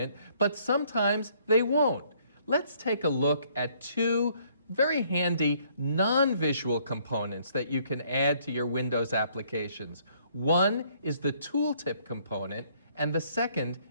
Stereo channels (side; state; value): both; inverted; correlation -0.65